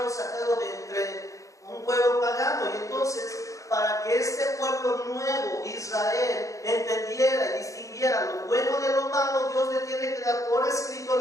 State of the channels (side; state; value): right; late; 0.16 ms